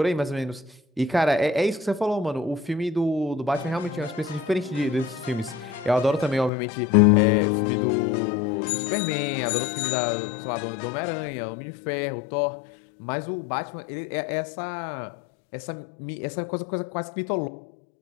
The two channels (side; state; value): right; drops out; at 6.5 s